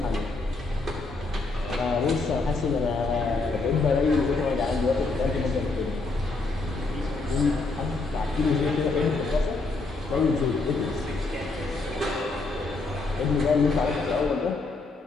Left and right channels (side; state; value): right; quieter; 3.6 dB